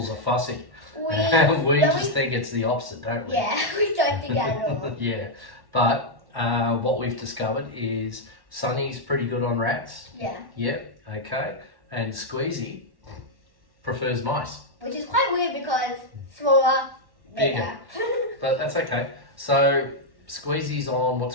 are fussy. We just think it's the opposite, don't we? Yeah, we don't think that at all. Yeah, but what we've discovered is Sunny's pretty good on rats. Yeah. Yep, okay. And Squeezy prefers mice. Which is quite weird because smaller, bigger. But that's okay. So Squeezy's on what's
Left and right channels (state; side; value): late; left; 1.1 ms